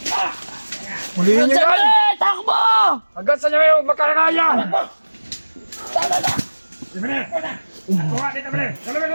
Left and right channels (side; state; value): both; inverted; correlation -1.00